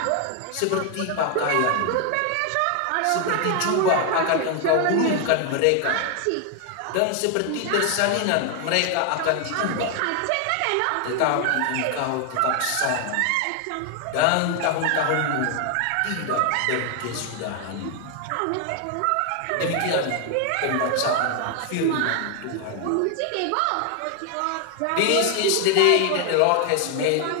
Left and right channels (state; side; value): different; both; correlation 0.00